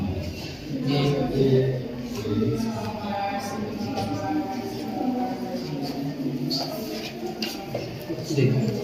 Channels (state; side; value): identical; both; correlation 1.00